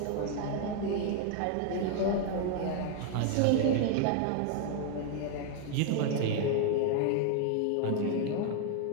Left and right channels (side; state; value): both; different; correlation 0.00